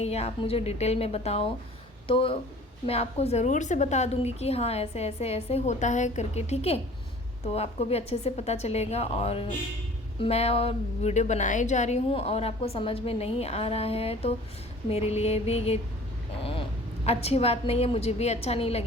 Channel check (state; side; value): normal; both; correlation 0.47